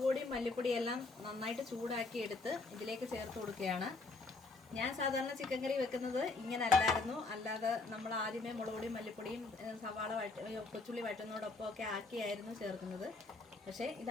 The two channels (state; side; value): quieter; right; 3.6 dB